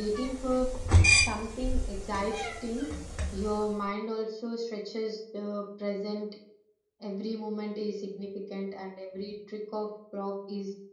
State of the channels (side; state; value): both; identical; correlation 1.00